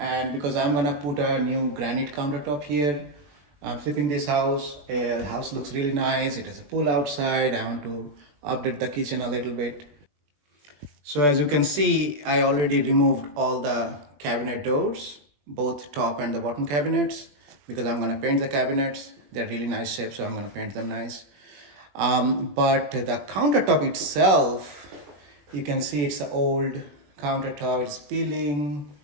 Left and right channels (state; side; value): late; left; 21 ms